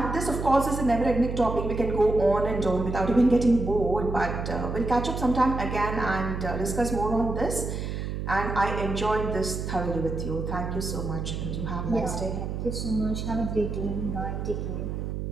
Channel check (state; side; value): noise; right; hum, 4 dB below the sound